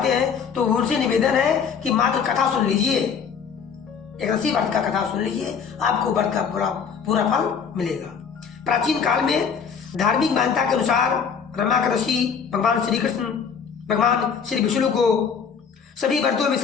हैं, तो उनसे निवेदन है कि मात्र कथा सुन लीजिए, एकादशी व्रत का कथा सुन लीजिए, आपको व्रत का पूरा फल मिलेगा। प्राचीन काल में धार्मिक मान्यता के अनुसार रमा एकादशी भगवान श्री कृष्ण, भगवान श्री विष्णु को सभी व्रतों में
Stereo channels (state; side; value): quieter; right; 6.5 dB